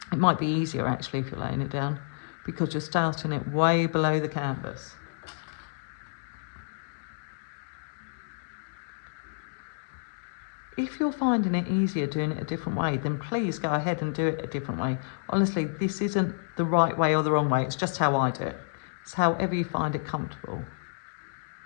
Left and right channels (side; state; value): right; silent; digital silence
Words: it might be easier actually if you're laying it down because you're starting it way below the canvas. If you're finding it easier doing it a different way, then please go ahead and do it a different way. Honestly, this isn't the right way or the wrong way. It's just how I do it. It's however you find it comfortable.